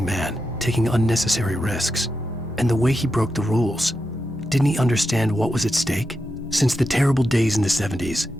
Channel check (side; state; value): both; normal; correlation 0.87